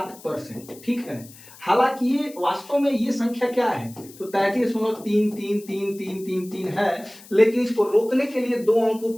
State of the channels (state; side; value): noise; left; hiss, 21 dB below the sound